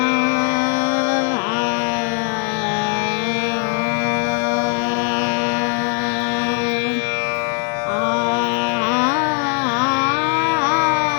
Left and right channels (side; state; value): right; quieter; 31.8 dB